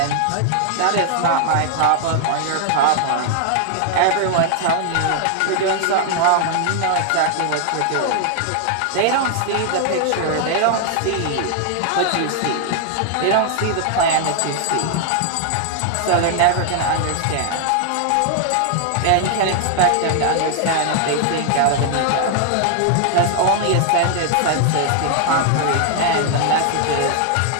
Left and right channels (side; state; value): both; different; correlation 0.00